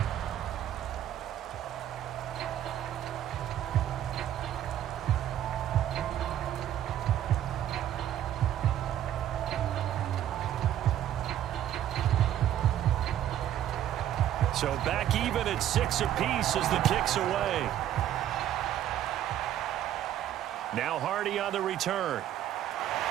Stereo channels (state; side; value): quieter; left; 11.4 dB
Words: So back even at 6 apiece as the kick's away. Now Hardy on the return.